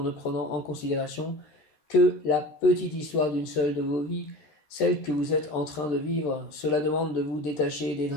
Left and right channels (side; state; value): right; late; 13 ms